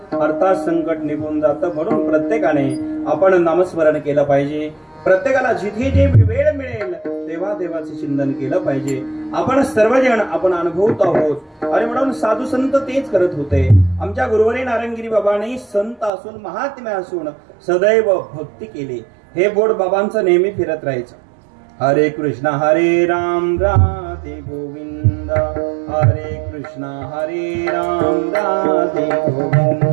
अर्थात संकट निघून जातं. म्हणून प्रत्येकाने आपण नामस्मरण केलं पाहिजे. प्रत्येकाला जिथे जे वेळ मिळेल तेव्हा देवाचे चिंतन केलं पाहिजे. आपण सर्वजण आपण अनुभवत आहोत आणि म्हणून साधू संत तेच करत होते. आमच्या गुरुवरी नारंगिरी बाबांनी संत असून महात्म्य असून सदैव भक्ती केली. हे बोर्ड बाबांचं नेहमी फिरत राहायचं. हरे कृष्ण हरे राम राधे गोविंद, हरे कृष्ण हरे राम राधे गोविंद,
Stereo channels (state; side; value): drops out; left; at 16.1 s